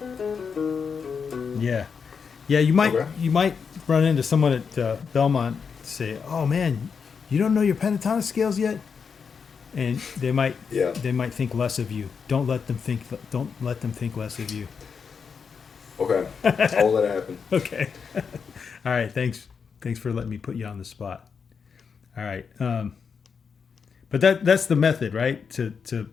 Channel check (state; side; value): quieter; right; 6.1 dB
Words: yeah, you might Okay. run into someone at Belmont say, "Oh man, you don't know your pentatonic scales yet," and they might Yeah. think less of you. Don't let them think less of you. Okay. I'll let it happen. Okay. All right. Thanks for letting me put you on the spot. All right. But that's the method, right? To